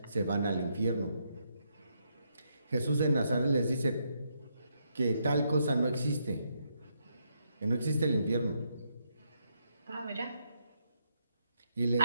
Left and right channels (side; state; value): both; inverted; correlation -0.78